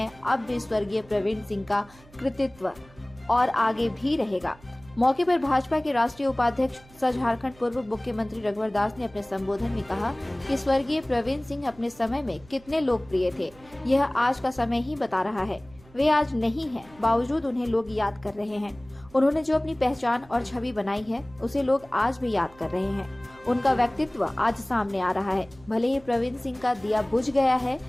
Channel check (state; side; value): noise; right; hum, 25 dB below the sound